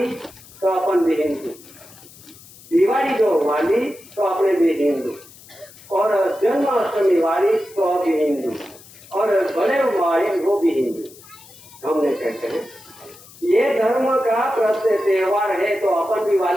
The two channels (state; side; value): noise; left; hiss, 22 dB below the sound